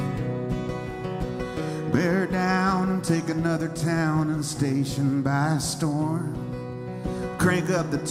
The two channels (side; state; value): both; identical; correlation 1.00